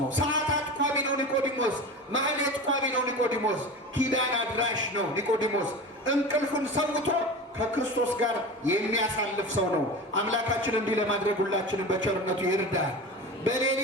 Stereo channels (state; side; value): normal; both; correlation 0.30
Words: ነው። ሰዓታት ቋሚ ነው ኒቆዲሞስ። ማህሌት ቋሚ ነው ኒቆዲሞስ። ኪዳን አድራሽ ነው ኒቆዲሞስ። እንቅልፉን ሰውቶ ከክርስቶስ ጋር የሚያሳልፍ ሰው ነው። አምላካችን እንዲህ ለማድረግ ሁላችንም በቸርነቱ ይርዳል።